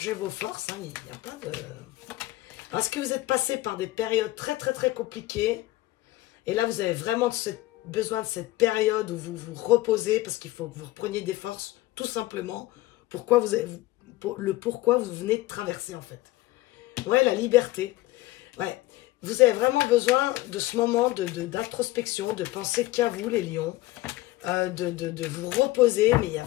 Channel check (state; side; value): quieter; right; 17.9 dB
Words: vos forces. Hein, il n'y a pas de... Est-ce que vous êtes passé par des périodes très, très, très compliquées? Et là, vous avez vraiment besoin de cette période où vous vous reposez parce qu'il faut que vous repreniez des forces, tout simplement. Pourquoi vous venez de traverser, en fait. Ouais, la liberté. Ouais. Vous avez vraiment besoin de ce moment d'introspection, de penser qu'à vous, les lions, de vous reposer. Mais il y a